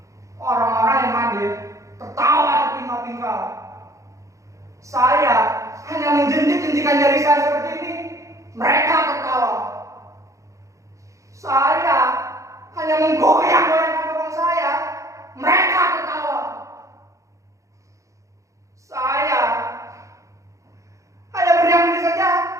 orang-orang yang hadir tertawa terpingkal-pingkal. Saya hanya menjentik-jentikan jari saya seperti ini, mereka tertawa. Saya hanya menggoyang-goyangkan bokong saya, mereka tertawa. Saya hanya berdiam diri saja,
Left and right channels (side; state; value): left; late; 0.15 ms